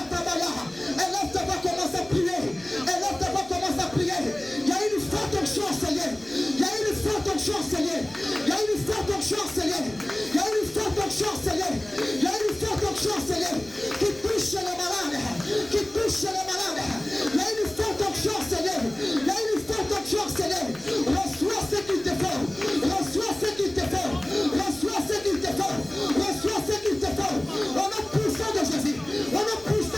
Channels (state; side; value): noise; left; rumble, 25 dB below the sound